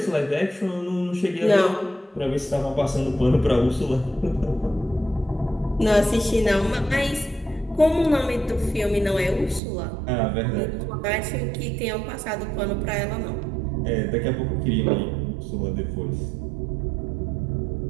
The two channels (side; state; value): left; drops out; at 9.6 s